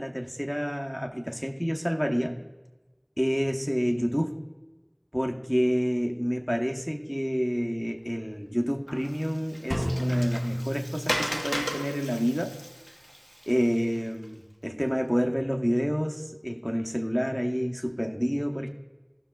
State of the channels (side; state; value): both; identical; correlation 1.00